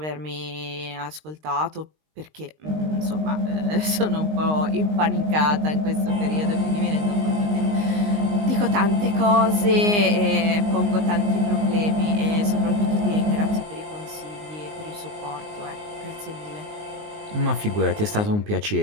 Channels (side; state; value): left; late; 19 ms